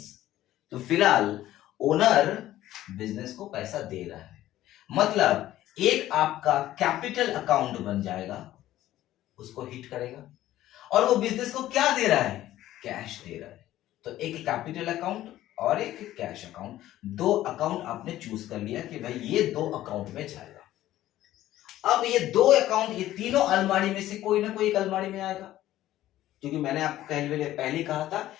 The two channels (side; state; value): right; quieter; 14.1 dB